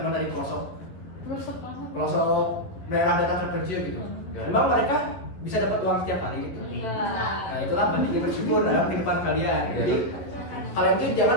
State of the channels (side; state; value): right; late; 11 ms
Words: dari pelosok daerah-daerah terpencil gitu. Memang mereka bisa dapat uang setiap hari gitu. Nah, itulah pentingnya bersyukur dalam kehidupan kalian. Jadi kalian tuh